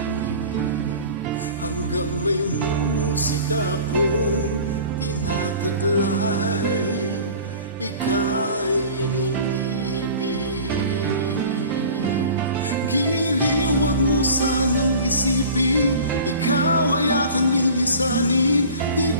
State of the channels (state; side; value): inverted; both; correlation -0.42